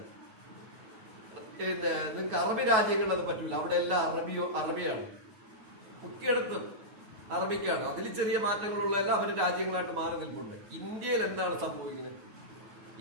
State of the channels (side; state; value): left; late; 9.2 ms